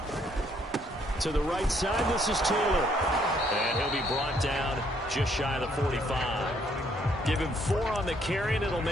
To the right side, this is Taylor. And he'll be brought down just shy of the 45. Give him 4 on the carry, and it'll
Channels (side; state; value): both; normal; correlation 0.68